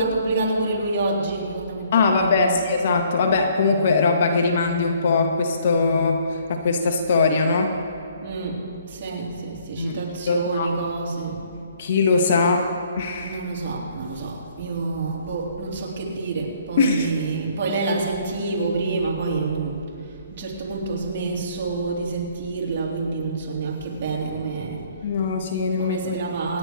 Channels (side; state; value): both; inverted; correlation -0.62